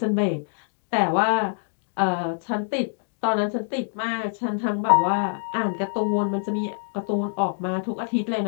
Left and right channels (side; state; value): right; silent; digital silence